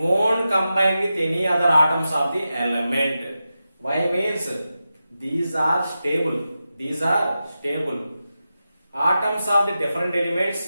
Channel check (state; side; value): inverted; both; correlation -0.91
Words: combine with any other atoms of the element. Why means these are stable. These are stable. Atoms of the different